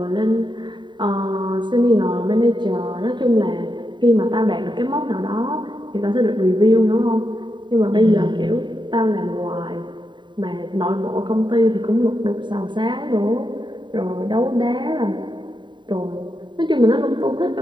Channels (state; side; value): late; left; 0.23 ms